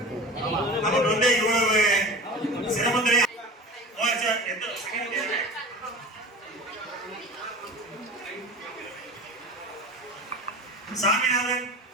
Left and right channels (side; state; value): both; normal; correlation 0.35